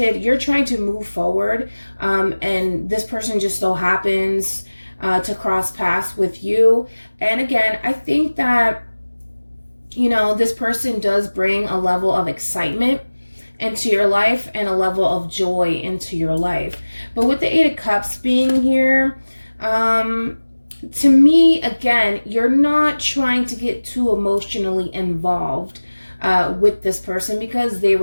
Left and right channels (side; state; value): both; inverted; correlation -1.00